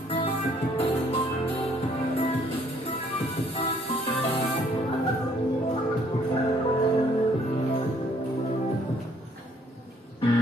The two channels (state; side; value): normal; both; correlation 0.63